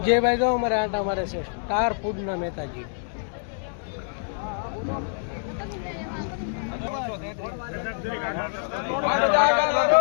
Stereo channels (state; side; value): silent; right; 61 dB below the other